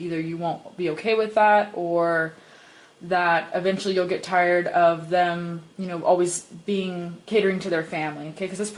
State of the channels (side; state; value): both; identical; correlation 1.00